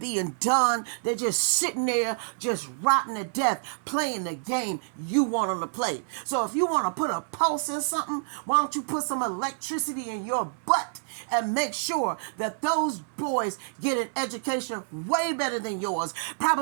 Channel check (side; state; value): left; silent; digital silence